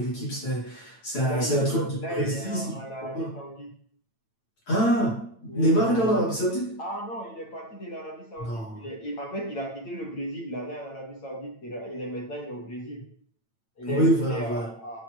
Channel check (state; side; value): late; right; 8.9 ms